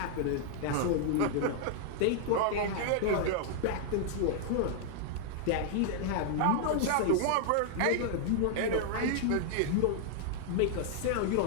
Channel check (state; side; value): different; both; correlation 0.00